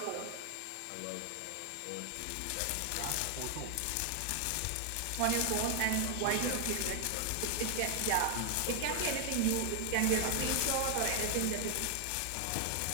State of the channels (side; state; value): both; different; correlation 0.00